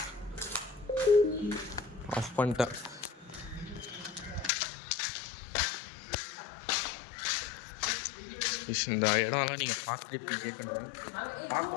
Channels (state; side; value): drops out; right; at 4.5 s